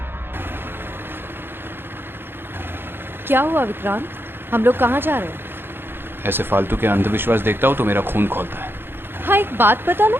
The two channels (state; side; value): late; left; 0.10 ms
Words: क्या हुआ विक्रांत, हम लोग कहाँ जा रहे हैं? ऐसे फालतू के अंधविश्वास देखता हूँ तो मेरा खून खौलता है। हाँ एक बात पता ना,